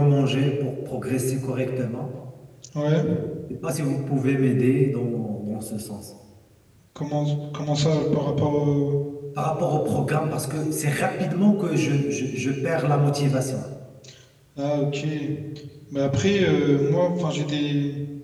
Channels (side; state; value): both; identical; correlation 1.00